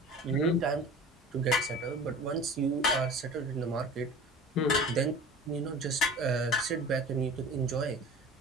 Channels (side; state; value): both; normal; correlation 0.39